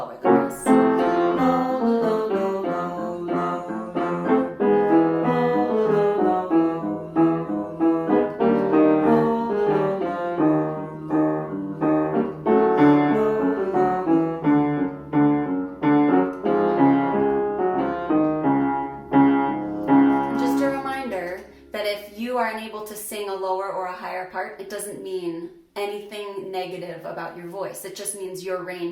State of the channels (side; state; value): both; identical; correlation 1.00